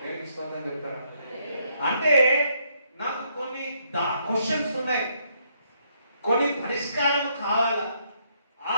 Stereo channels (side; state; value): both; inverted; correlation -0.72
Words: స్తోత్రం చెప్తారా. అంటే నాకు కొన్ని క్వశ్చన్స్ ఉన్నాయి, కొన్ని పరిష్కారం కావాలా.